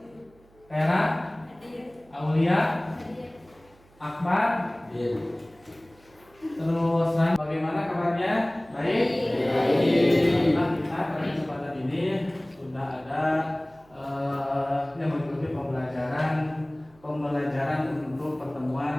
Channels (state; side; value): noise; right; hum, 29 dB below the sound